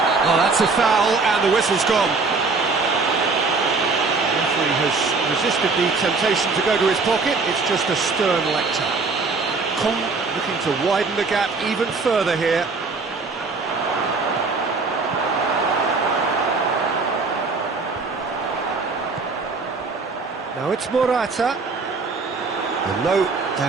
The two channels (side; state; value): left; quieter; 4.2 dB